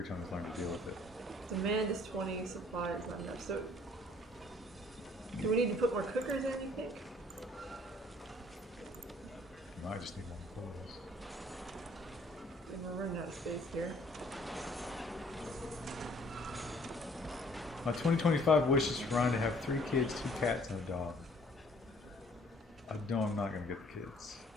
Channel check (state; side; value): normal; both; correlation 0.58